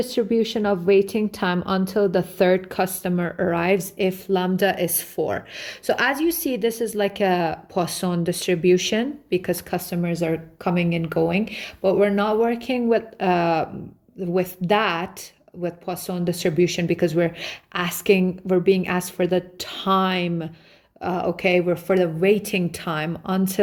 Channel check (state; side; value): identical; both; correlation 1.00